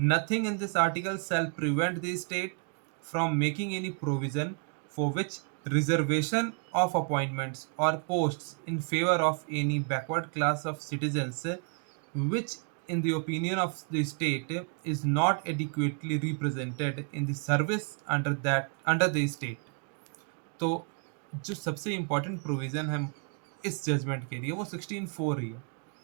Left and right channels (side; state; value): left; quieter; 37.7 dB